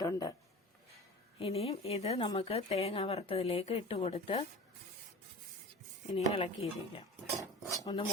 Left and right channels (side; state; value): both; normal; correlation 0.36